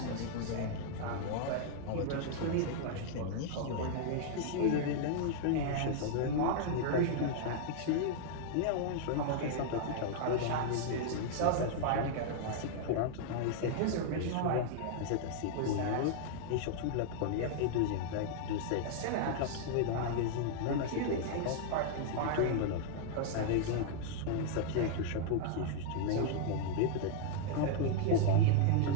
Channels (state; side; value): different; both; correlation -0.01